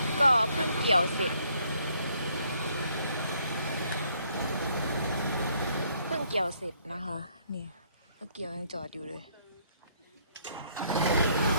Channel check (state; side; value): inverted; both; correlation -0.67